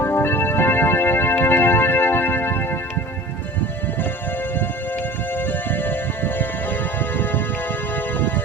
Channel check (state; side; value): normal; both; correlation 0.40